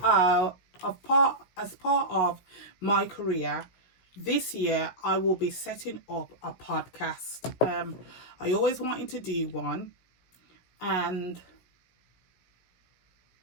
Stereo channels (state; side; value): late; right; 16 ms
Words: of my career, this year I will be setting up a podcast. I always wanted to do one, and